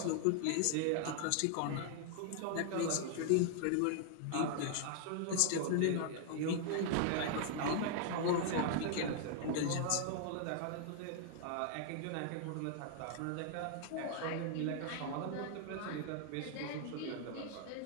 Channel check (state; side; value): different; both; correlation 0.00